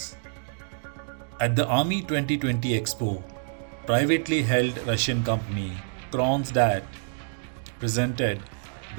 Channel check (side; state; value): left; silent; digital silence